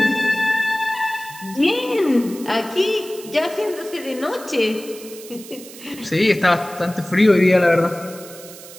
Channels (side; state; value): right; noise; hiss, 17 dB below the sound